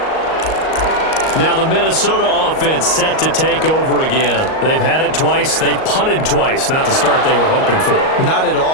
Now the Minnesota offense set to take over again. They've had it twice. They've punted twice. Not the start they were hoping for. Not at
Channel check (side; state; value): right; late; 38 ms